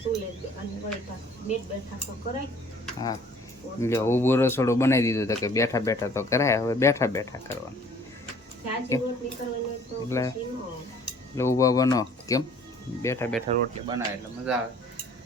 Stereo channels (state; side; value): normal; both; correlation 0.55